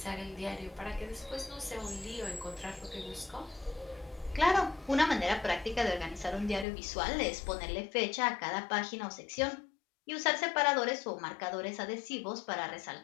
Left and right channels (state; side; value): drops out; right; at 6.7 s